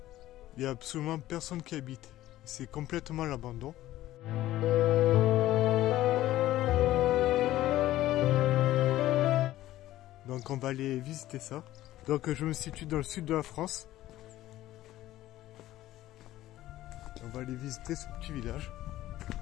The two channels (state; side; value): quieter; right; 14.9 dB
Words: Il n'y a absolument personne qui habite, c'est complètement l'abandon. Donc on va aller visiter ça. Donc je me situe dans le sud de la France. On va aller visiter ce petit village.